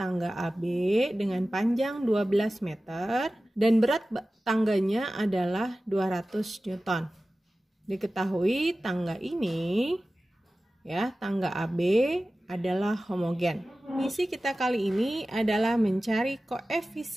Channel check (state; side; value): normal; both; correlation 0.96